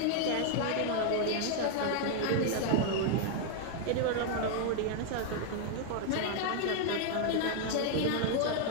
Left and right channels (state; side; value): different; both; correlation 0.00